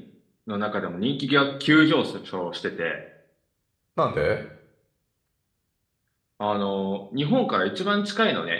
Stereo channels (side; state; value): both; identical; correlation 1.00